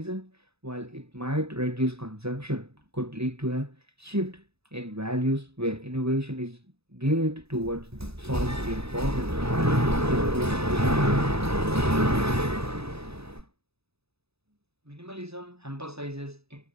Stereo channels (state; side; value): late; left; 0.79 ms